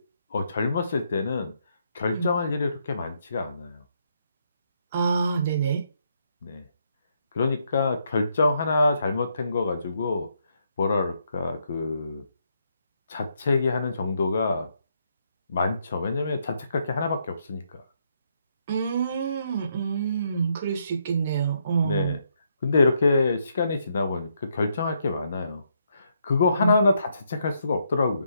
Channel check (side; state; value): both; inverted; correlation -0.76